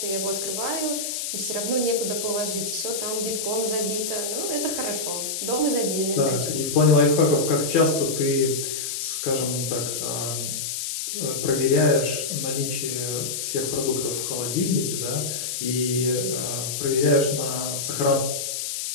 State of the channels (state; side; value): noise; left; hiss, 3 dB below the sound